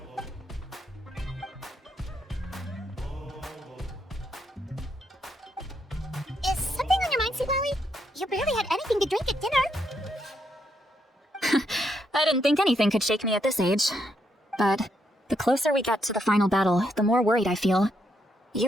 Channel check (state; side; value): normal; both; correlation 0.78